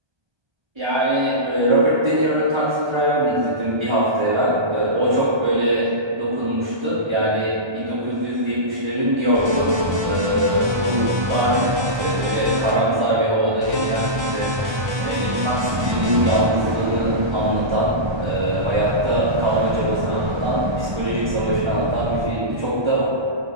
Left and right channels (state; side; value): late; left; 1.2 ms